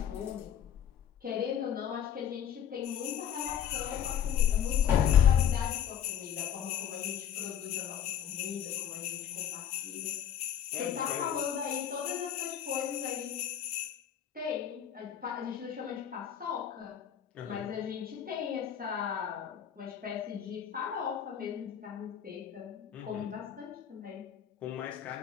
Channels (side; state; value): right; quieter; 9.1 dB